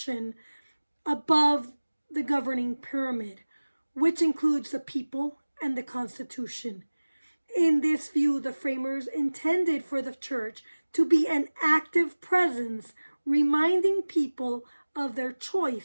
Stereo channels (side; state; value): both; inverted; correlation -1.00